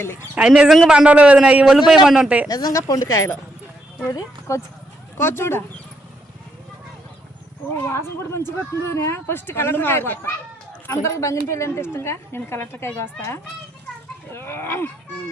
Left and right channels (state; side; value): normal; both; correlation 0.77